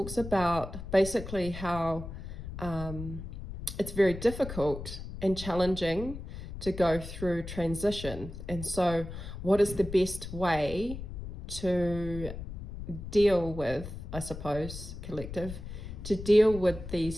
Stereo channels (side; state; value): left; noise; rumble, 10 dB below the sound